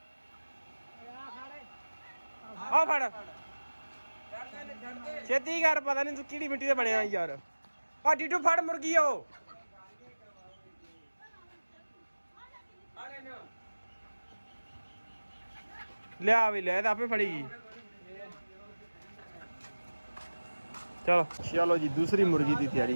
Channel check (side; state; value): both; inverted; correlation -1.00